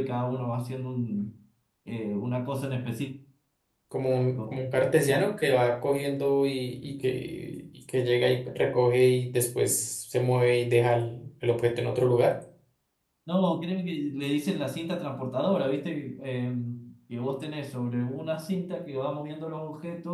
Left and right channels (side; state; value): both; identical; correlation 1.00